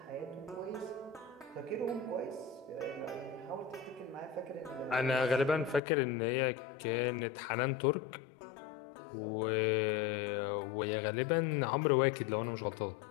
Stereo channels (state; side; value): drops out; right; at 5.8 s